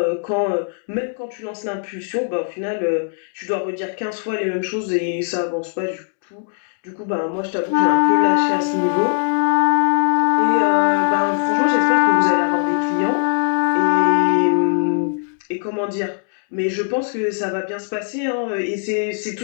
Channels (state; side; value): silent; right; 65 dB below the other